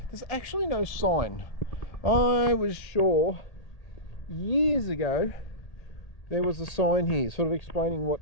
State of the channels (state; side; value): late; right; 1.8 ms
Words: There's actually no sign. I was sure years ago there was a sign here sort of explaining what